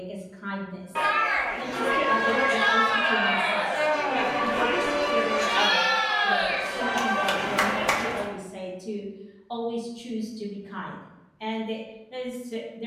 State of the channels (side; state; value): both; identical; correlation 1.00